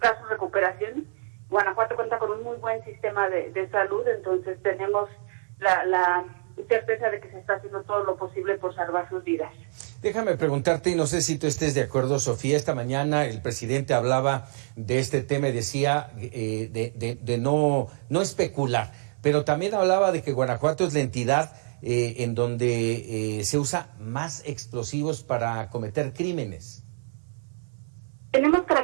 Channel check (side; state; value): left; silent; digital silence